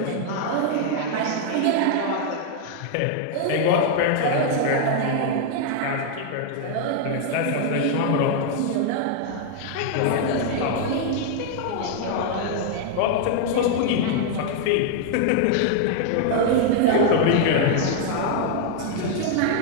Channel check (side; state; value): both; different; correlation 0.00